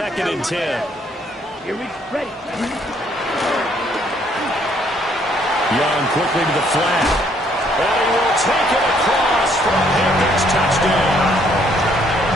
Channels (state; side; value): normal; both; correlation 0.66